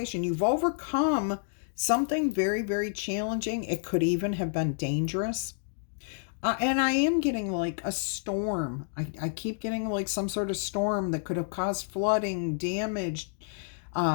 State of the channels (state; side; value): silent; right; digital silence